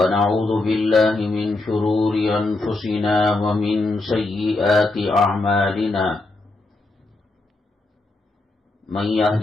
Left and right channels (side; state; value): right; quieter; 3.0 dB